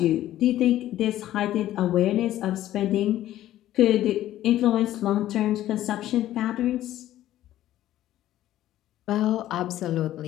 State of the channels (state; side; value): quieter; right; 13.5 dB